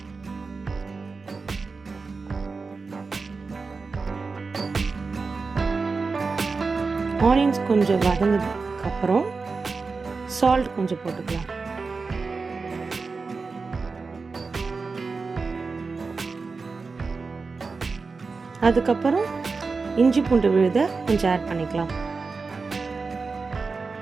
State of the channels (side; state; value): left; quieter; 4.4 dB